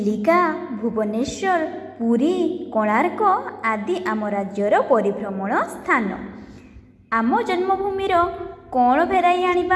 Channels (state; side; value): identical; both; correlation 1.00